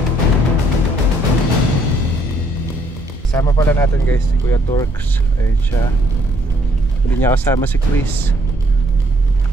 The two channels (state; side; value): normal; both; correlation 0.67